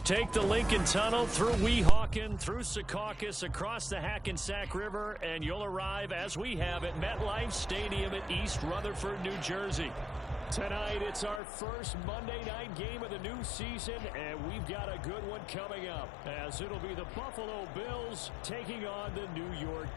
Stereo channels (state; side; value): drops out; right; at 11.4 s